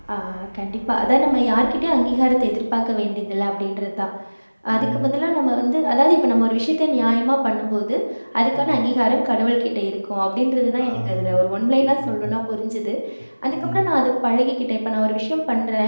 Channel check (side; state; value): both; inverted; correlation -1.00